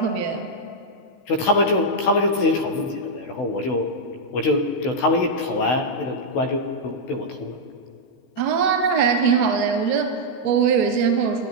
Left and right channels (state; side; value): late; right; 16 ms